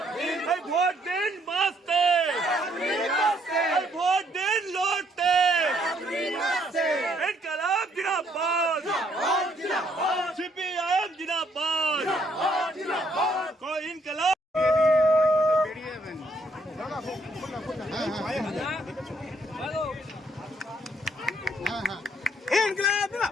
ভোট দিন বাঁচতে, ভোট দিন লড়তে। ইনকলাব জিন্দাবাদ, সিপিআইএম জিন্দাবাদ, ইনকলাব।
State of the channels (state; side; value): normal; both; correlation 0.69